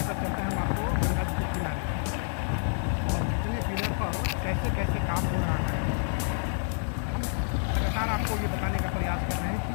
चलते हैं हम आपको गंगा जी के किनारे और कितने पिलर पर कैसे कैसे काम हो रहा है। हम लगातार आपको ये बताने का प्रयास कर रहे हैं कि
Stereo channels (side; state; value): right; silent; 59 dB below the other